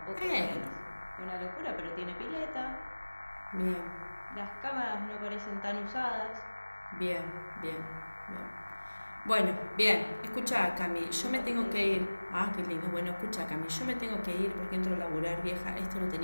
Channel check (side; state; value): both; inverted; correlation -1.00